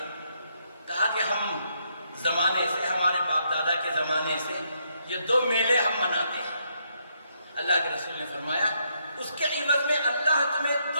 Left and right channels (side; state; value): both; inverted; correlation -0.76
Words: کہا کہ ہم زمانے سے، ہمارے باپ دادا کے زمانے سے یہ دو میلے ہم مناتے ہیں۔ اللہ کے رسول نے فرمایا اس کے عوض میں اللہ تمہیں